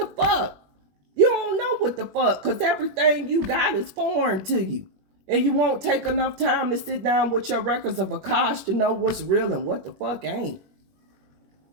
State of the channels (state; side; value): late; left; 21 ms